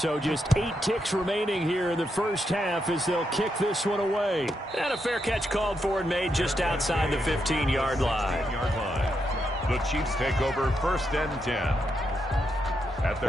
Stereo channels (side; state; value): both; normal; correlation 0.82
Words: just 8 ticks remaining here in the first half as they'll kick this one away. And a fair catch called for and made just outside the 15-yard line. The Chiefs take over 1st and 10.